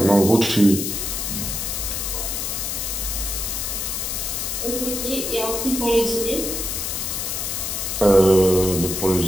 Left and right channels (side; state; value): left; noise; hiss, 3 dB below the sound